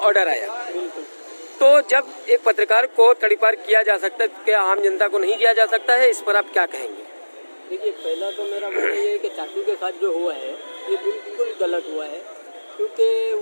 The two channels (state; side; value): inverted; both; correlation -1.00